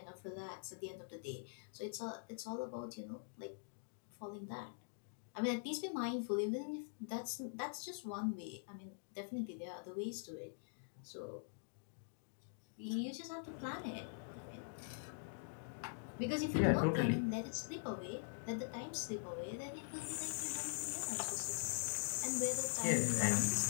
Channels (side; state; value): right; silent; digital silence